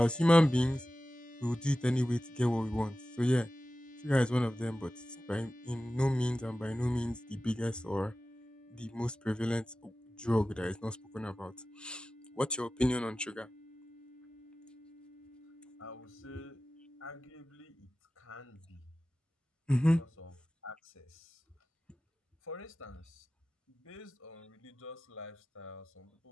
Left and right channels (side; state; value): both; normal; correlation 0.95